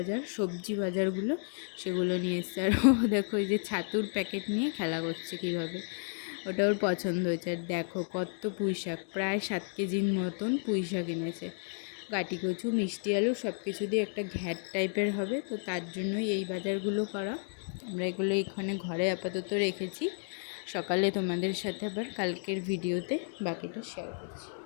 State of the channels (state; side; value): silent; right; 56 dB below the other